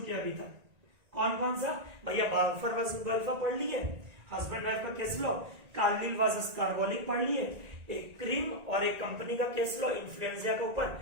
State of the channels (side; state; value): left; late; 1.9 ms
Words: हैं अभी तक। कौन कौन सा भैया? बाल्फर वर्सेस गल्फा पढ़ लिए, हस्बैंड वाइफ का case law, Carlill versus carbonic पढ़ लिए, एक क्रीम और एक कंपनी का केस लॉ इन्फ्लुएंजा के ऊपर,